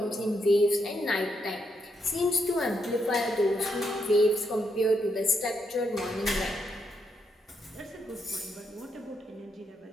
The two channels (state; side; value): normal; both; correlation 0.79